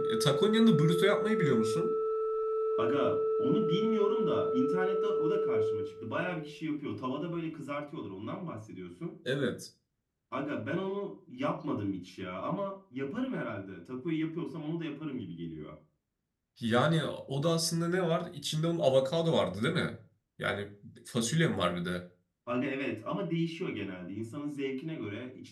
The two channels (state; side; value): identical; both; correlation 1.00